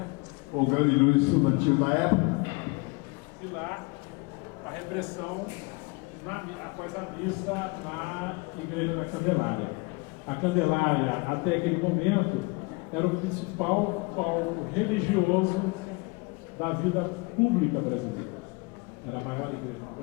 O grande líder estudantil da época. E lá, a repressão após a missa na Igreja da Candelária. A Candelária, até aquele momento, era o principal palco religioso da vida pública brasileira. Era a maior igreja do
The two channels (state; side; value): quieter; right; 27.8 dB